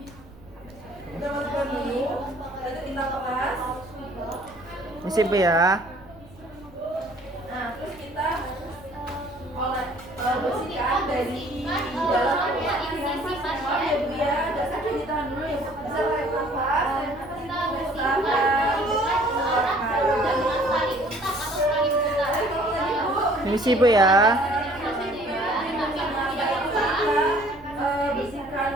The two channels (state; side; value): noise; right; rumble, 22 dB below the sound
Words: Permisi Bu ya. Permisi Bu ya. Bersihkan